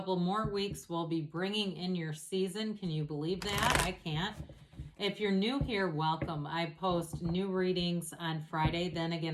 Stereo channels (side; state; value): both; identical; correlation 1.00